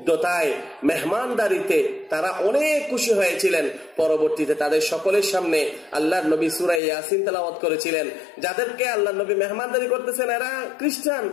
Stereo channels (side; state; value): right; drops out; at 6.8 s